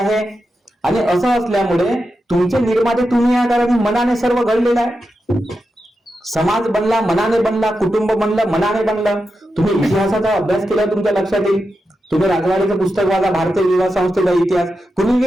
आणि असं असल्यामुळे तुमचे निर्माते तुम्ही या कारण मनाने सर्व घडलेलं आहे. समाज बनला मनाने बनला, कुटुंब बनलं मनाने बनलं. तुम्ही इतिहासाचा अभ्यास केला तुमच्या लक्षात येईल. तुम्ही राजवाडीचं पुस्तक वाचा, भारतीय विवाह संस्थेचा इतिहास, कुणी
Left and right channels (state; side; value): normal; both; correlation 0.89